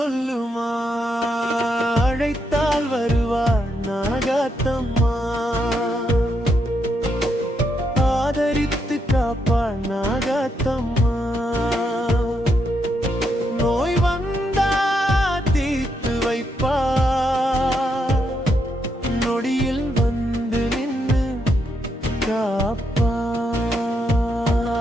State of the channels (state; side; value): normal; both; correlation 0.79